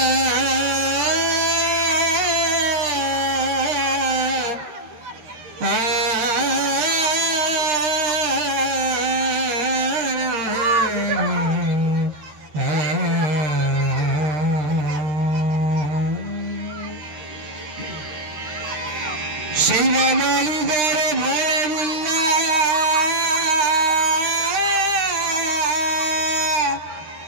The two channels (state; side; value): late; left; 13 ms